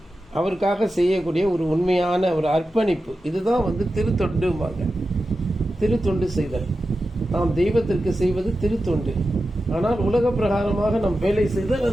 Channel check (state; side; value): normal; both; correlation 0.92